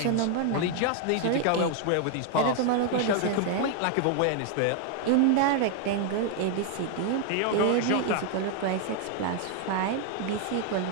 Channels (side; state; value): both; different; correlation 0.00